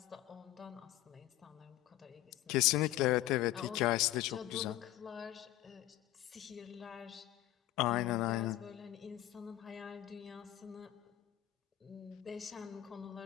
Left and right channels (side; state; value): right; quieter; 14.6 dB